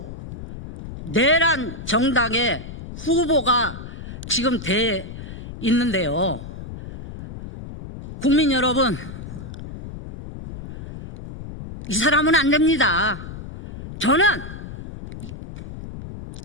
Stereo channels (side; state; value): left; noise; rumble, 11 dB below the sound